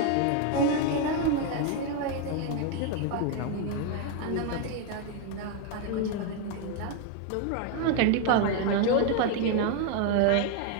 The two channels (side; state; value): both; different; correlation 0.01